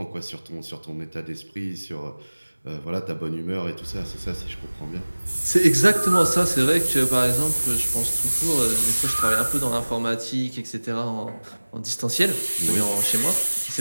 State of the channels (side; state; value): both; inverted; correlation -1.00